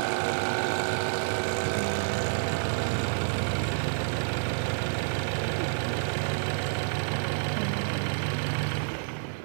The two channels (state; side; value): silent; left; digital silence